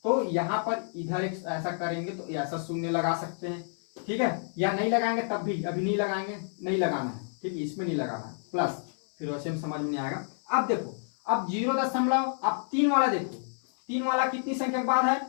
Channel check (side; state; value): right; silent; 58 dB below the other